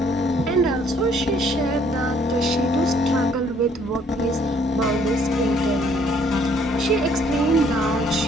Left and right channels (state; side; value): normal; both; correlation 0.63